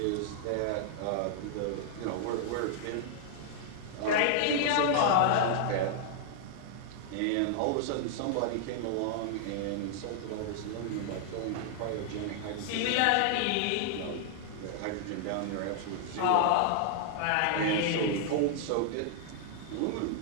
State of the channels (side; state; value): both; different; correlation -0.01